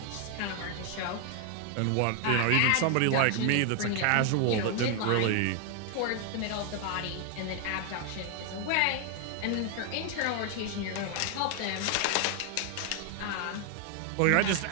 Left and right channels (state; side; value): different; both; correlation 0.00